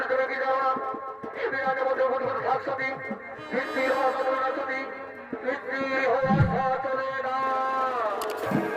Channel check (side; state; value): both; identical; correlation 1.00